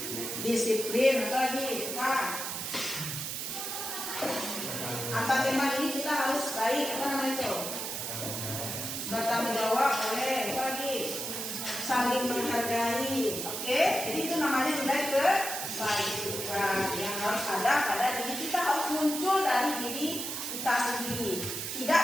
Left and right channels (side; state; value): right; noise; hiss, 4 dB below the sound